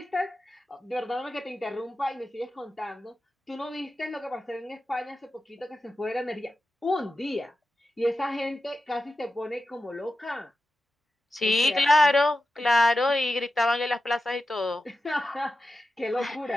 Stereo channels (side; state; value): both; normal; correlation 0.91